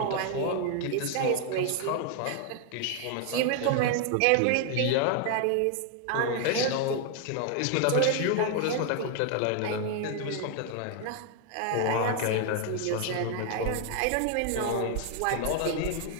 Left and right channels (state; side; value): different; both; correlation 0.00